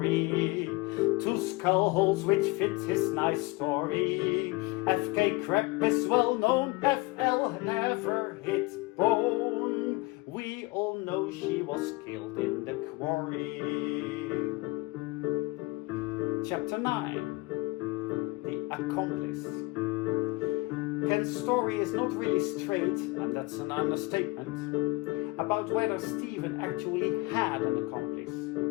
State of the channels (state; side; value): quieter; right; 23.2 dB